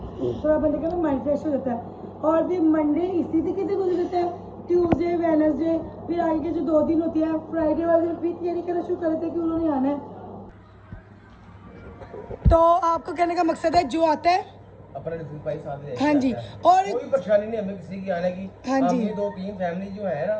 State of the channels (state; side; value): identical; both; correlation 1.00